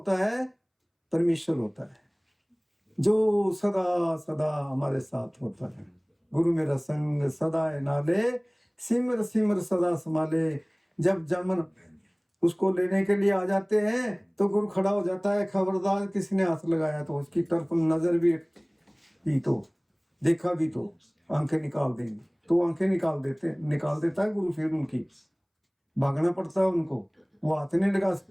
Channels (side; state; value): both; identical; correlation 1.00